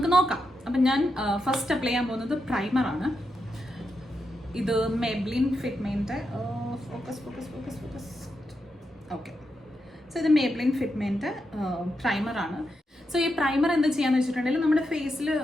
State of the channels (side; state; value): both; normal; correlation 0.85